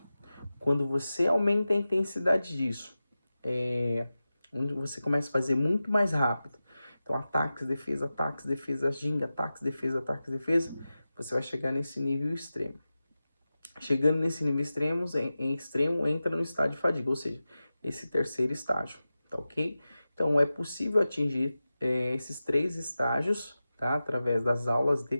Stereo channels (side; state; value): both; inverted; correlation -0.95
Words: Quando você aumenta a intensidade disso, onde você começa a fazer muito mais rápido, então ataques, defesa, ginga, ataques, defesa, você vai chegar nesse nível extremo. Chegando nesse nível extremo, extremo entra no estágio de fadiga, ou seja, esse terceiro estágio, tá ok? Então é possível atingir esses 3 estágios, tá? Através das aulas de